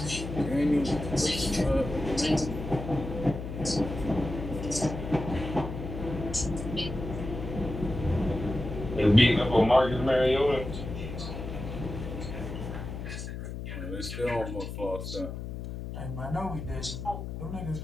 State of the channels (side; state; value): left; noise; hum, 7 dB below the sound